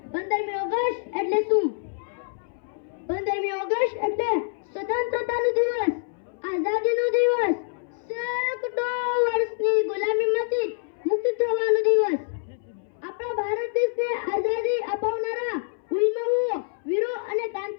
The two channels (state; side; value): silent; right; 61 dB below the other